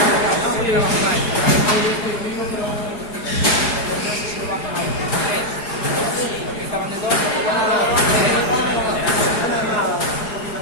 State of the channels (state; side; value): late; right; 4.8 ms